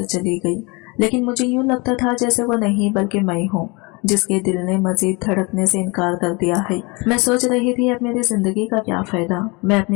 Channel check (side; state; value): right; quieter; 27.7 dB